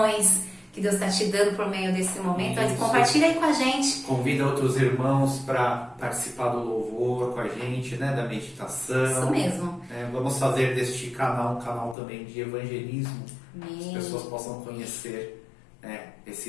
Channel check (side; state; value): right; drops out; at 12.0 s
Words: que Deus está te dando por meio desse momento. Isso. Compartilha aí com a gente. Convida outros irmãos para participar do louvor com a gente, né? Da meditação. Isso mesmo. Vamos fazer deste canal um canal também de evangelismo. Amém. Que as pessoas possam conhecer, né,